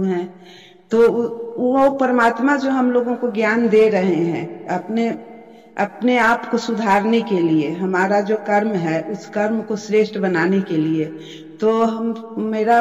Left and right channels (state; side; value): identical; both; correlation 1.00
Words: हैं, तो वो परमात्मा जो हम लोगों को ज्ञान दे रहे हैं अपने आप को सुधारने के लिए, हमारा जो कर्म है उस कर्म को श्रेष्ठ बनाने के लिए, तो